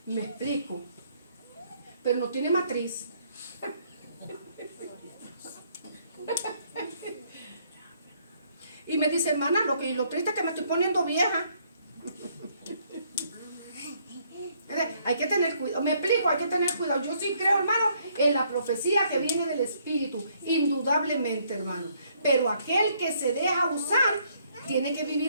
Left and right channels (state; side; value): inverted; both; correlation -0.68